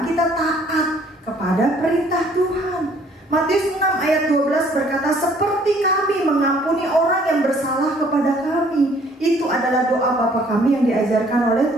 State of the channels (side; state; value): both; normal; correlation 0.60